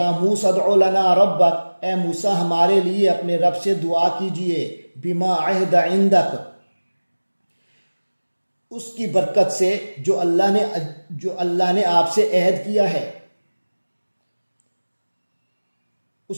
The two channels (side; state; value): both; inverted; correlation -1.00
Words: موسیٰ ادع لنا ربک اے موسیٰ ہمارے لیے اپنے رب سے دعا کیجئے، بما عہد عندک اس کی برکت سے جو اللہ نے آپ سے عہد کیا ہے،